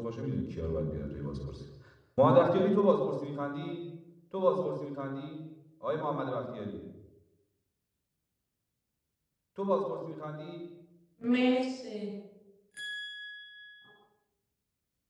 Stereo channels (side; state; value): both; identical; correlation 1.00